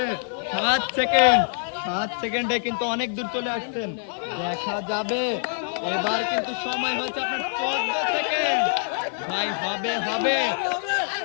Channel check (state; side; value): silent; right; 62 dB below the other